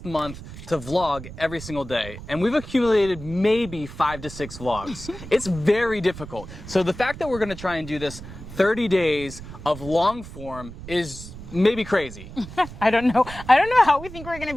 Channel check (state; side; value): noise; right; rumble, 13 dB below the sound